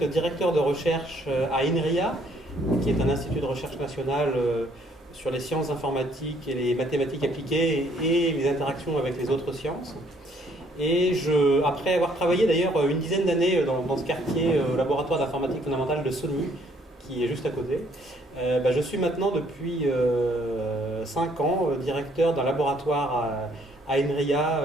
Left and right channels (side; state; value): both; normal; correlation 0.64